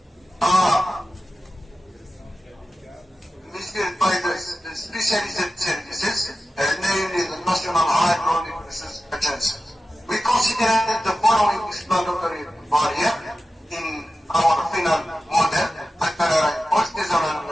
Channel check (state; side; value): normal; both; correlation 0.94